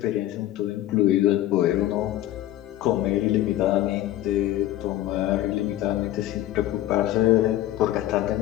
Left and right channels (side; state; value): right; quieter; 14.0 dB